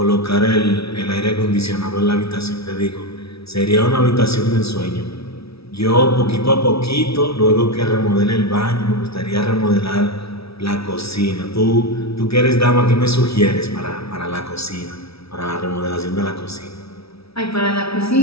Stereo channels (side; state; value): right; late; 0.77 ms